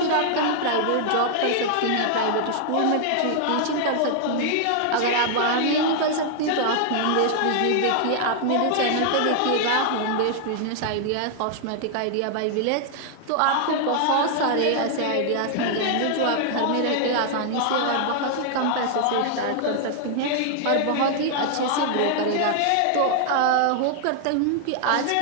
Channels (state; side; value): different; both; correlation 0.00